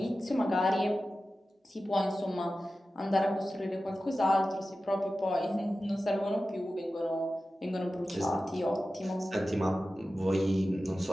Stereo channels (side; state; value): both; normal; correlation 0.94